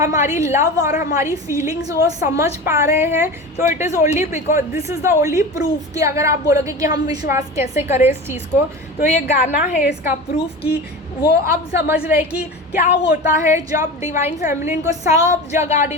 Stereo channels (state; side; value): normal; both; correlation 0.30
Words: लव और हमारी फीलिंग्स वो समझ पा रहे हैं। तो it is only because this is the only proof कि अगर आप बोलोगे कि हम विश्वास कैसे करें इस चीज़ को, तो ये गाना है इसका प्रूफ कि वो अब समझ रहे कि क्या होता है जब डिवाइन फेमिनिन को सब जगह